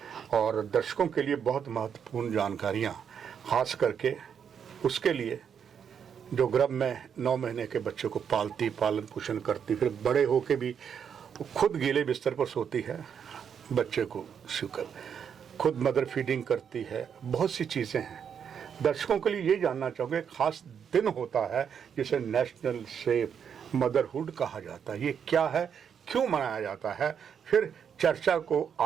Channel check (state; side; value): quieter; left; 7.6 dB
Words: और दर्शकों के लिए बहुत महत्वपूर्ण जानकारियां, खास करके उसके लिए जो गर्भ में 9 महीने के बच्चे को पालती, पालन पोषण करती, फिर बड़े होके भी खुद गीले बिस्तर पर सोती है, बच्चे को शुकर खुद मदर फीडिंग करती है, बहुत सी चीज़ें हैं। दर्शकों के लिए ये जानना चाहूँगे, खास दिन होता है जिसे नेशनल सेफ मदरहुड कहा जाता है, ये क्या है, क्यों मनाया जाता है? फिर चर्चा को